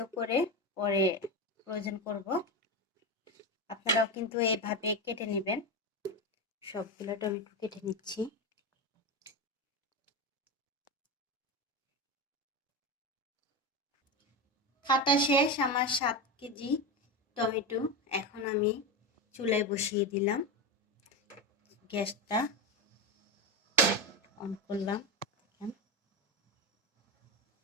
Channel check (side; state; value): both; normal; correlation 0.17